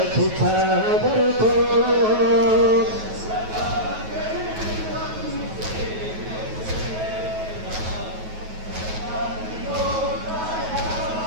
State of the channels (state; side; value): late; left; 9.3 ms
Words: की चादर को